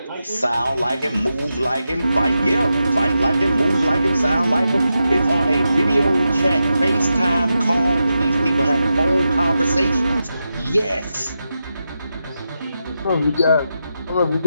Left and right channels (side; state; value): both; inverted; correlation -0.89